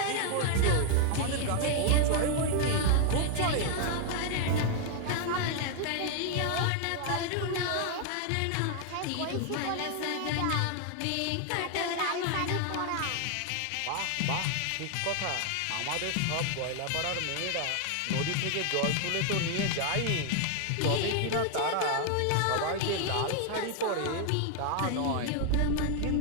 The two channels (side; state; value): both; different; correlation 0.00